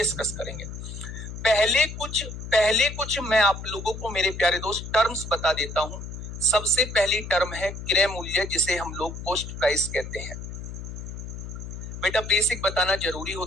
करेंगे। पहले कुछ मैं आप लोगों को मेरे प्यारे दोस्त टर्म्स बता देता हूं। सबसे पहली टर्म है क्रय मूल्य, जिसे हम लोग कॉस्ट प्राइस कहते हैं। बेटा बेसिक बताना जरूरी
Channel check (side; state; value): left; noise; hum, 9 dB below the sound